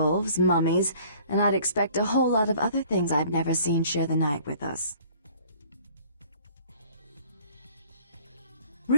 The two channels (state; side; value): inverted; both; correlation -0.53